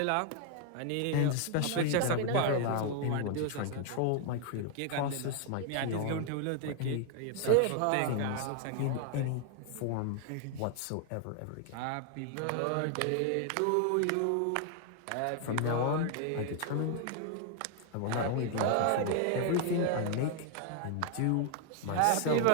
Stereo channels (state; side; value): different; both; correlation 0.00